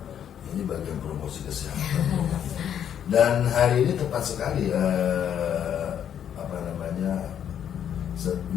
Ini bagian promosi kesehatan. Dan hari ini tepat sekali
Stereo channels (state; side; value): quieter; right; 9.3 dB